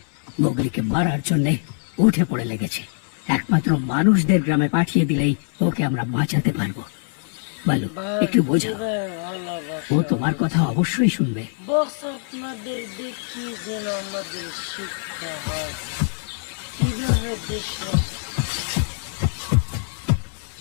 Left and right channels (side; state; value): right; silent; 63 dB below the other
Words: মোগলিকে মারার জন্য উঠে পড়ে লেগেছে। একমাত্র মানুষদের গ্রামে পাঠিয়ে দিলেই ওকে আমরা বাঁচাতে পারবো। বলো, একটু বোঝাও। ও তোমার কথা অবশ্যই শুনবে। আপনাদের দেখি যেন আমাদের শিক্ষা হয়, কিভাবে দেশ